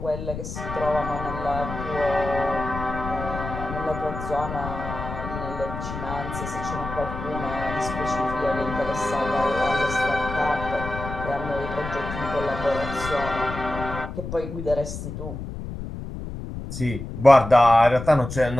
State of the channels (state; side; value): noise; left; rumble, 8 dB below the sound